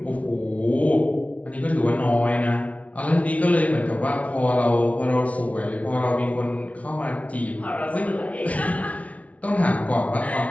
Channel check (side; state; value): right; late; 0.067 ms